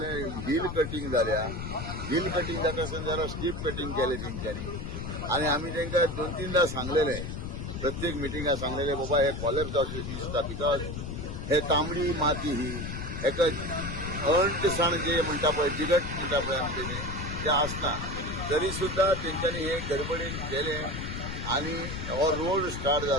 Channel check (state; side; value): noise; left; rumble, 6 dB below the sound